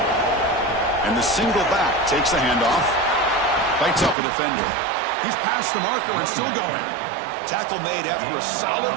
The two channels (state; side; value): drops out; left; at 4.2 s